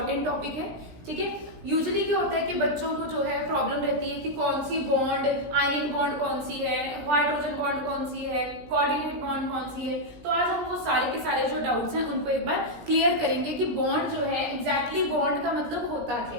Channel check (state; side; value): late; left; 17 ms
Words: टॉपिक है। ठीक है, यूजुअली क्या होता है कि बच्चों को जो है प्रॉब्लम रहती है कि कौन सी बॉन्ड, आयनिक बॉन्ड कौन सी है, हाइड्रोजन बॉन्ड कौन सी है, कोऑर्डिनेट बॉन्ड कौन सी है। तो आज हम वो सारे के सारे जो डाउट्स हैं उनको एक बार क्लियर करेंगे कि बॉन्ड जो है एग्जैक्टली बॉन्ड का मतलब होता